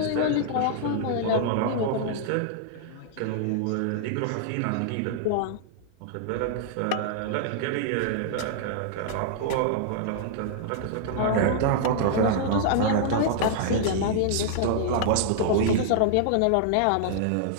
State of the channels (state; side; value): different; both; correlation -0.01